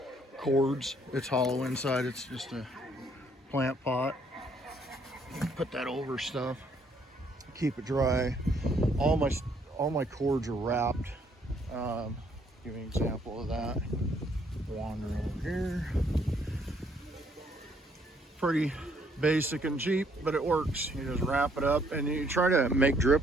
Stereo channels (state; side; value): normal; both; correlation 0.67